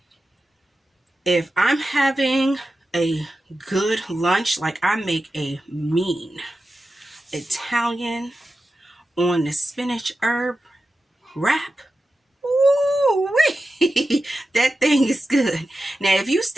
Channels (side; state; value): both; normal; correlation 0.92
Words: if I'm having a good lunch, like I make a mean Italian on the spinach herb wrap. Ooh-wee. That thing is good. Now, if you